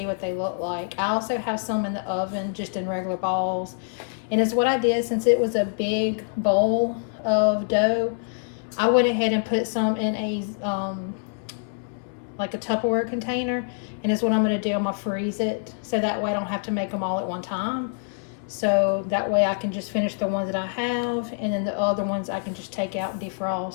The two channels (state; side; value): silent; right; digital silence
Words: what they look like. I also have some in the oven, just in regular balls. And it's what I did, since it was a big bowl of dough, I went ahead and put some in a, like a Tupperware container. And it's what I'm gonna do, I'm gonna freeze it. So that way I don't have to make them all at one time. So that way I can just finish the ones that I have, and then the other ones I can just take out and